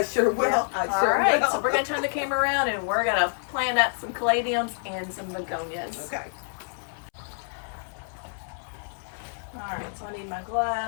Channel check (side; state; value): right; silent; 60 dB below the other